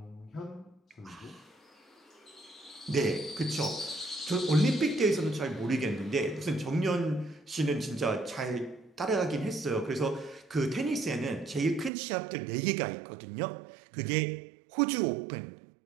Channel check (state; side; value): drops out; left; at 11.9 s